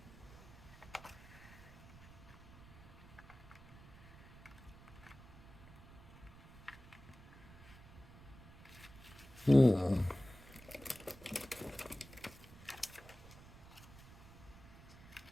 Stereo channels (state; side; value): noise; right; rumble, 18 dB below the sound